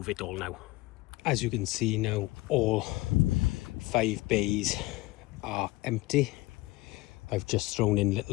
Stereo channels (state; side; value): quieter; right; 20.2 dB